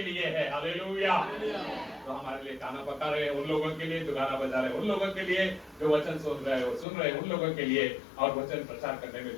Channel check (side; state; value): right; drops out; at 6.9 s